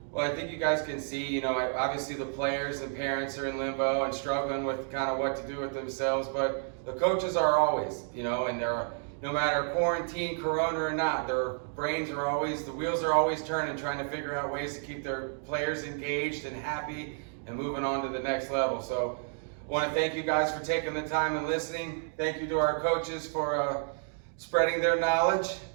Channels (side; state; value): left; silent; 57 dB below the other